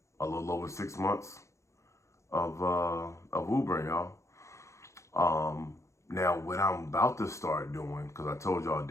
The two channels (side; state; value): right; late; 0.14 ms